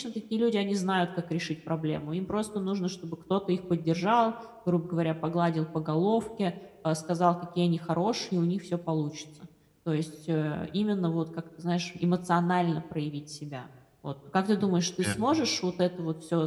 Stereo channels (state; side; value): identical; both; correlation 1.00